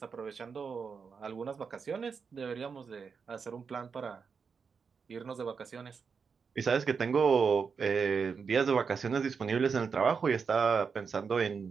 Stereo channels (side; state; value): left; quieter; 5.7 dB